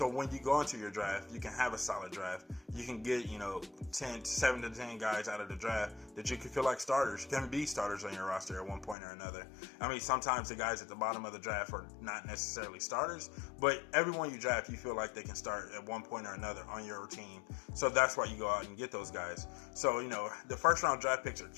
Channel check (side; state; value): right; drops out; at 9.0 s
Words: when you go into your draft, you can have a solid draft. You can get 7 to 10 guys out of the draft that you can feel like starters, can be starters on your roster at one point or another. I mean, sometimes the guys at the bottom of the draft are not necessarily starters, but everyone you draft, you feel like they can start at one point or another on your team. So that's why you go out and get those guys. So the first round draft picks are